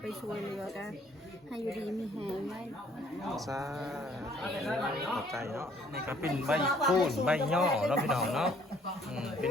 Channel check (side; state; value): both; normal; correlation 0.61